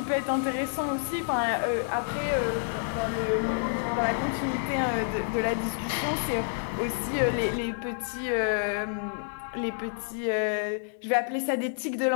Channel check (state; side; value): silent; right; digital silence